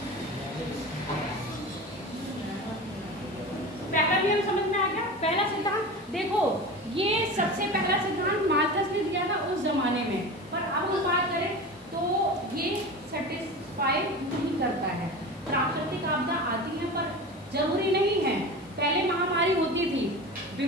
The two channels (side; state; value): left; noise; hiss, 29 dB below the sound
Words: पहला नियम समझ में आ गया। पहला सिद्धांत देखो, ये सबसे पहला सिद्धांत माल्थस ने दिया था उस जमाने में, पर अब हम बात करें तो ये सेटिस्फाई नहीं करता है। प्राकृतिक आपदा आती है पर जरूरी नहीं है। पहले महामारी होती थी,